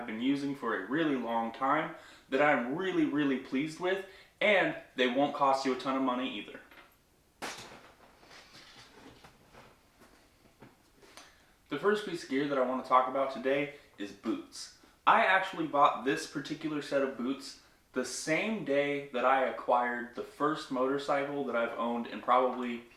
been using for a really long time that I'm really pleased with, and they won't cost you a ton of money either. The first piece of gear that I want to talk about today is boots. I actually bought this particular set of boots the same day that I acquired the first motorcycle that I've owned in probably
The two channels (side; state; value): both; identical; correlation 1.00